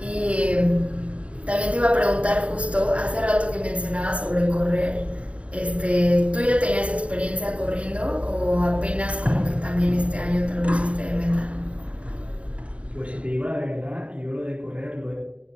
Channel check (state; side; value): late; left; 0.063 ms